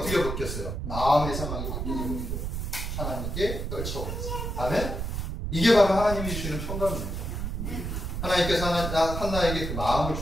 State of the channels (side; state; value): right; noise; rumble, 4 dB below the sound